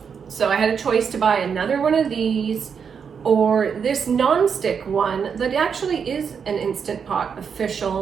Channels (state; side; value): quieter; left; 6.6 dB